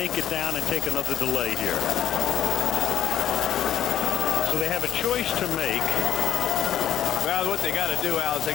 it down and take another delay here. So they have a choice to make. Well, what they got to do, Al, is they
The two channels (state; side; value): quieter; right; 11.0 dB